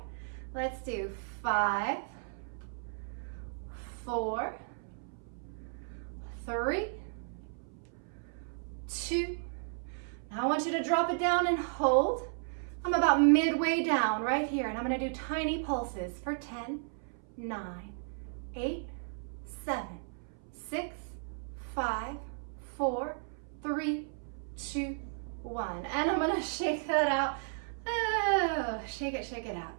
Let's do 5, 4, 3, 2. Now I want you to drop it down and hold. I'm about midway down right here, and I'm gonna do tiny pulses for 10, 9, 8, 7, 6, 5, 4, 3, 2, 1. And I'm gonna shake that out. Oh, shake it out.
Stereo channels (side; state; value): left; silent; 55 dB below the other